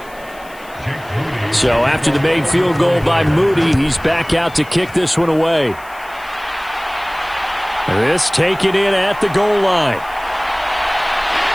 So after the made field goal by Moody, he's back out to kick this one away. This taken in at the goal line.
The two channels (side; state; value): left; noise; hiss, 24 dB below the sound